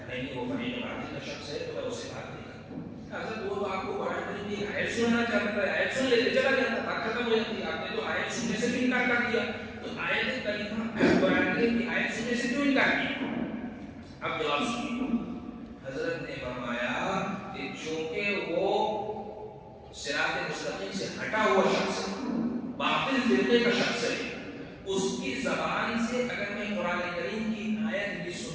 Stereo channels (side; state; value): both; identical; correlation 1.00